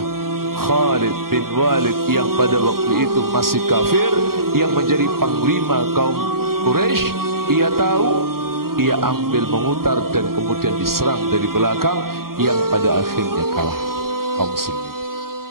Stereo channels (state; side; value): late; left; 0.93 ms